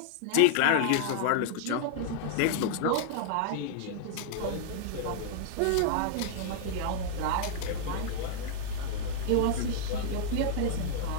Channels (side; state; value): both; different; correlation -0.01